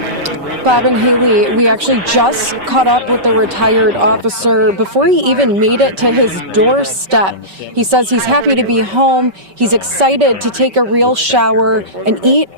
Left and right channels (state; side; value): late; left; 5.2 ms